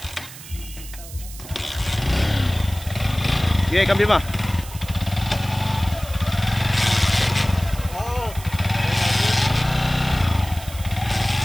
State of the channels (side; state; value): right; noise; hiss, 15 dB below the sound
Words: Okay, cambio ba?